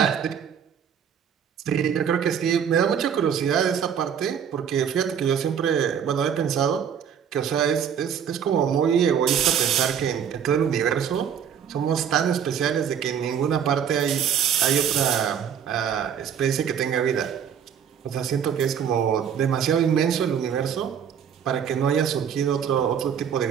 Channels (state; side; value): quieter; left; 8.2 dB